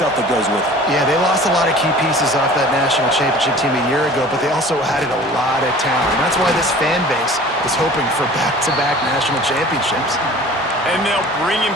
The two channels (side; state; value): both; normal; correlation 0.45